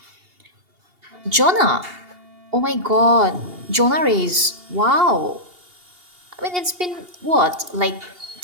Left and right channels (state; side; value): late; left; 2.8 ms